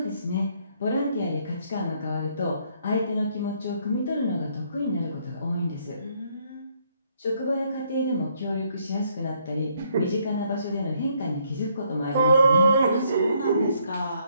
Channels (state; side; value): inverted; both; correlation -0.70